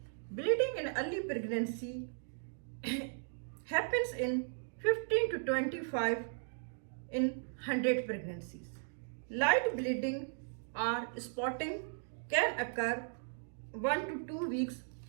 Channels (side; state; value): left; silent; digital silence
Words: Bleeding in early pregnancy happens in 15 to 25 in 100 pregnancies. Light bleeding or spotting can occur 1 to 2 weeks